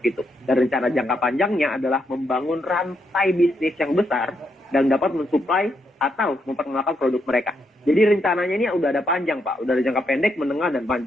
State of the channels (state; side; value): normal; both; correlation 0.79